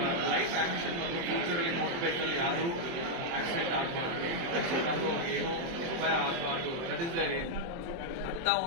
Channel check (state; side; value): late; left; 24 ms